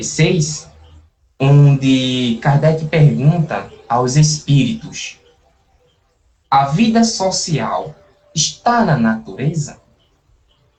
onde Kardec pergunta aos espíritos: a vida social está na natureza?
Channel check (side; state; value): both; identical; correlation 1.00